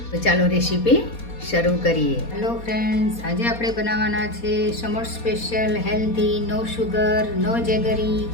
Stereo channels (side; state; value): right; late; 4.2 ms